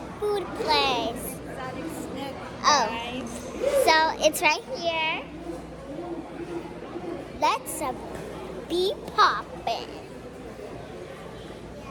food place. Oh, so it's right here. Let's be poppin'.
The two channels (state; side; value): identical; both; correlation 1.00